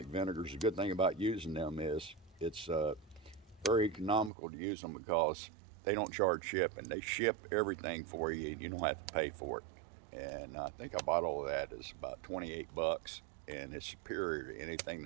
vinegars. The good thing about using them is it's very economical to use them because they don't charge shipping. They ship everything for you. You don't have to pay for it. And I think a bottle of that is about 28 bucks, and it's superior to anything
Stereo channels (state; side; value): drops out; left; at 4.3 s